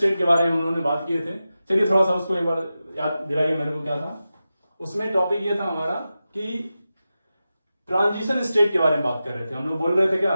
के बारे में हम लोगों ने बात किए थे। चलिए थोड़ा सा उसको एक बार याद दिलाइए मेरे को, क्या था उसमें। टॉपिक ये था हमारा कि ट्रांजिशन स्टेट के बारे में बात कर रहे थे। हम लोग बोल रहे थे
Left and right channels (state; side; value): inverted; both; correlation -0.93